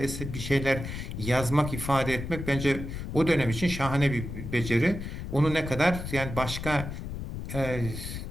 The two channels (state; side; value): noise; left; rumble, 7 dB below the sound